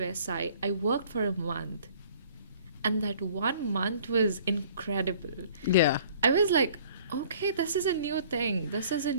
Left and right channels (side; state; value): both; inverted; correlation -0.54